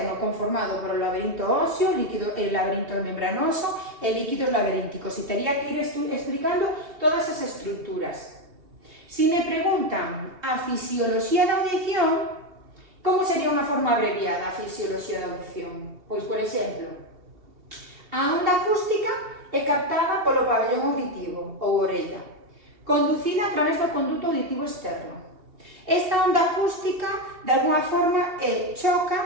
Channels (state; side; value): late; left; 2.7 ms